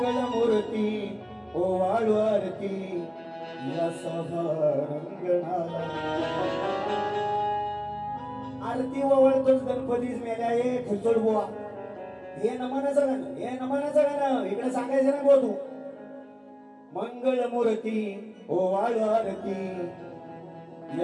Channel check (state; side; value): identical; both; correlation 1.00